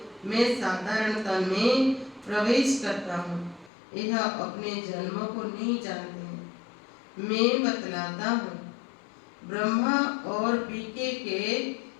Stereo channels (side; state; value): right; drops out; at 3.7 s